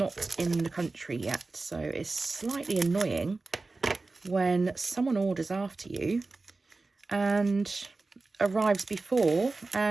in the country yet, so it's slightly annoying when someone orders after you and arrives before,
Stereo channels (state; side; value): quieter; left; 3.6 dB